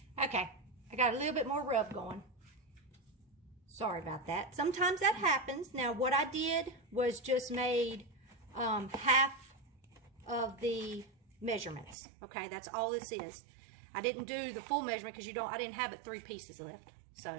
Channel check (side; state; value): left; drops out; at 12.0 s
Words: Okay, I got a little bit more rub going. Sorry about that. Sometimes that happens. Now what I did was just made half of the measurements. Okay, that's all this is. I didn't do the full measurement because I didn't have it 3 pieces left.